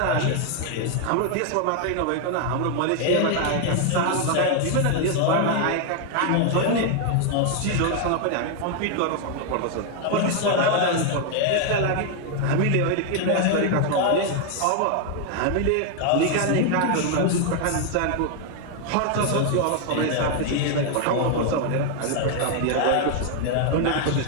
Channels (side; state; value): both; different; correlation 0.00